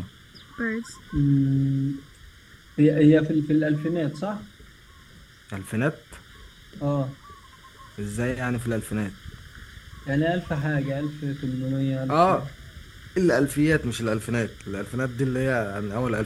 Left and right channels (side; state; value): both; identical; correlation 1.00